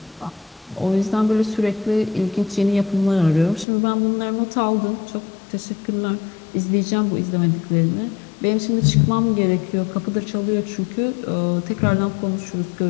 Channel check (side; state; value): right; drops out; at 3.7 s